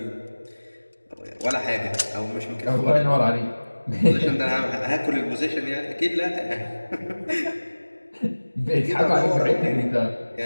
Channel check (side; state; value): both; inverted; correlation -1.00